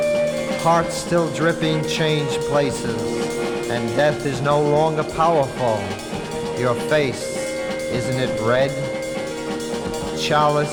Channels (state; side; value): identical; both; correlation 1.00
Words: Hearts still dripping change places, and death is no longer powerful. Your face, isn't it red?